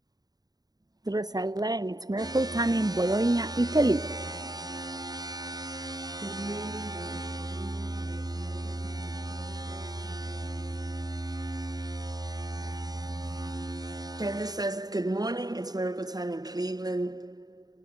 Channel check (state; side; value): late; left; 0.19 ms